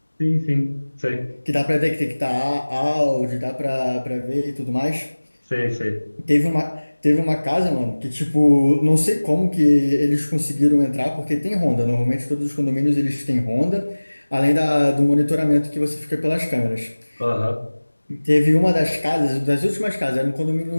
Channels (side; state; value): both; inverted; correlation -1.00